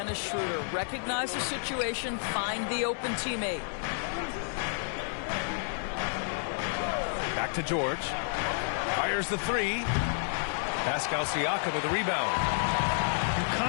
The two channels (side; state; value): right; silent; digital silence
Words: Schroeder. Recognize the situation, find the open teammate. Back to George. Fires the 3. Pascal Siakam with the rebound. You